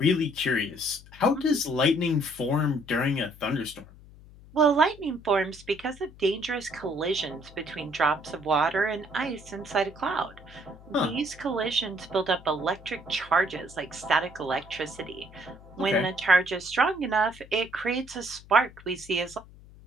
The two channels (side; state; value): left; noise; hum, 21 dB below the sound